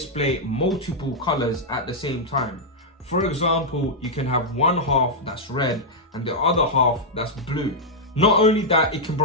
multiple colors at the same time. For example, you can have one half that's red and the other half that's blue. Not only that, it can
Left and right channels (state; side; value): normal; both; correlation -0.05